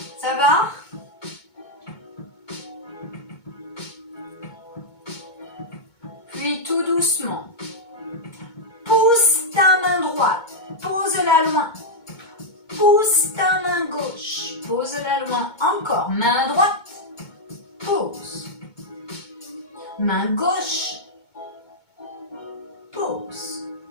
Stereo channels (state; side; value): late; right; 2.2 ms